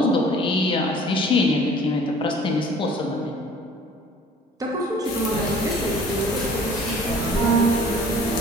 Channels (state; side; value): normal; both; correlation 0.51